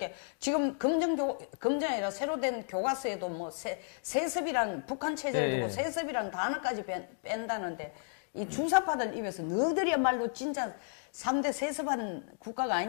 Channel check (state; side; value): silent; right; 56 dB below the other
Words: 지금 금정이 아니라 새로 된 교과서에도 뭐 세습이란 북한 체제를 두고 세습이란 단어까지 뺀다는데 이 주사파들 입에서 너희들이야말로 진짜 3대 세습한 국가가